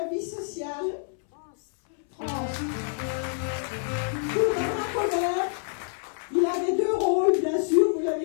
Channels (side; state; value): right; silent; 60 dB below the other